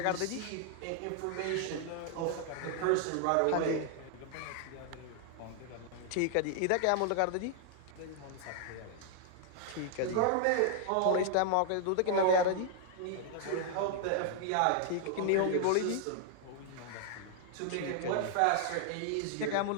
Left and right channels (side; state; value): both; different; correlation -0.01